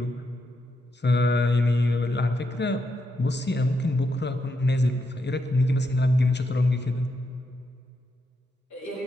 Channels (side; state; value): both; normal; correlation 0.82